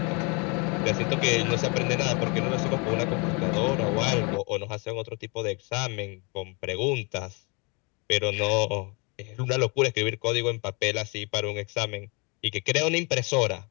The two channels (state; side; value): quieter; right; 31.7 dB